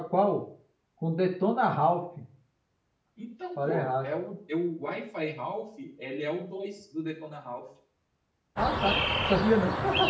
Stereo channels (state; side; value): identical; both; correlation 1.00